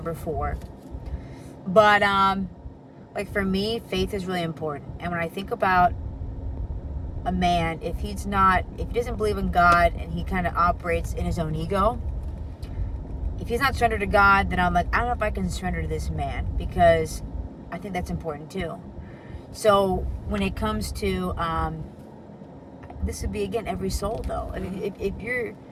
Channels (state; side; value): identical; both; correlation 1.00